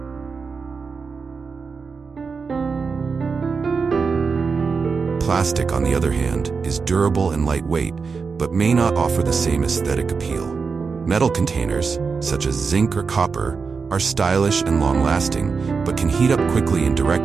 Plastic, on the other hand, is durable and lightweight, but may not offer the same aesthetic appeal. Metal containers, such as zinc or copper, are stylish and long-lasting, but can heat up quickly in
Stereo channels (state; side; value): quieter; left; 5.1 dB